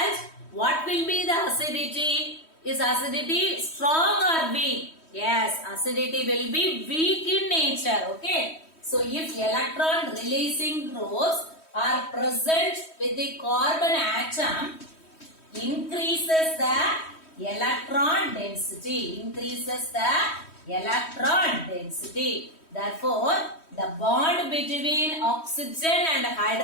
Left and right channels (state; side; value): late; right; 3.1 ms